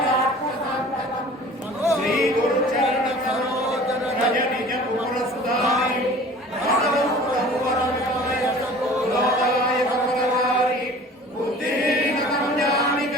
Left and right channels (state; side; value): normal; both; correlation 0.45